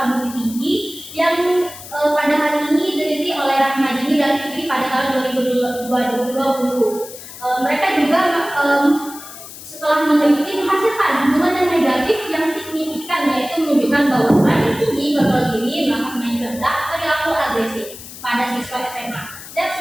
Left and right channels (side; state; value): left; noise; hiss, 14 dB below the sound